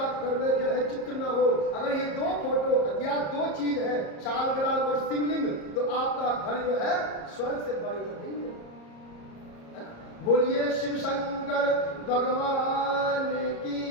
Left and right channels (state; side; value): late; right; 34 ms